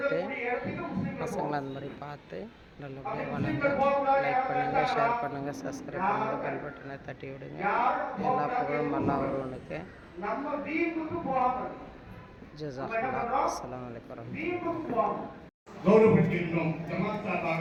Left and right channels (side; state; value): both; identical; correlation 1.00